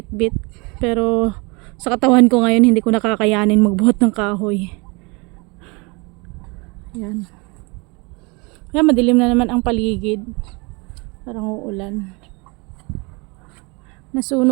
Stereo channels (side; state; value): left; quieter; 28.6 dB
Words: Pero sa katawan ko ngayon, hindi ko nakakayanin magbuhat ng kahoy. Yan. Yan, madilim na naman ang paligid. Parang uulan.